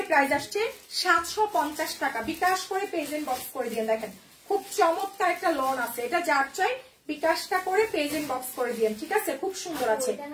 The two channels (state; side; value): identical; both; correlation 1.00